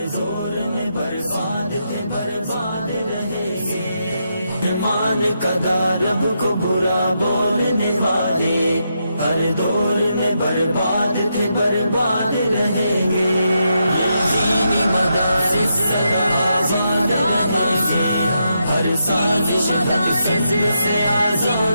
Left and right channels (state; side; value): inverted; both; correlation -0.82